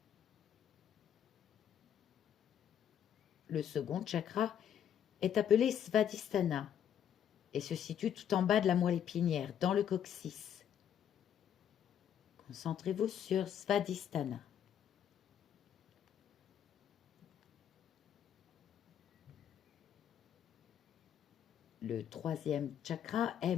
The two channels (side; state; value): right; quieter; 9.4 dB